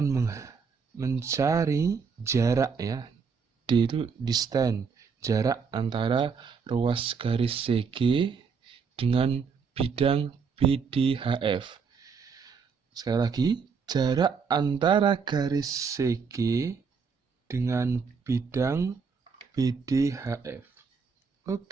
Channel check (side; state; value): left; quieter; 5.7 dB